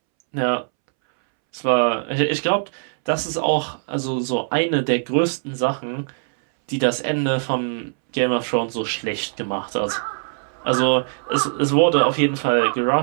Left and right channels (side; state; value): left; silent; 65 dB below the other